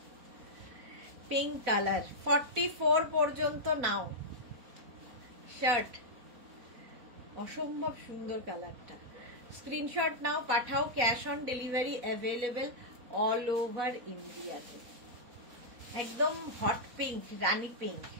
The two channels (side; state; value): left; late; 4.1 ms